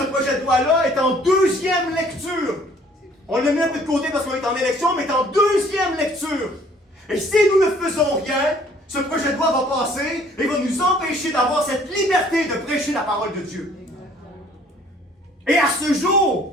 projet de loi-là est en deuxième lecture. On l'a mis un peu de côté parce qu'on est en élection, mais est en deuxième lecture. Et si nous ne faisons rien, ce projet de loi va passer et va nous empêcher d'avoir cette liberté de prêcher la parole de Dieu. Et à ce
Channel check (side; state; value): both; normal; correlation 0.58